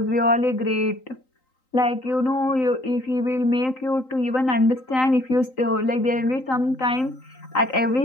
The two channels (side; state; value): right; late; 3.9 ms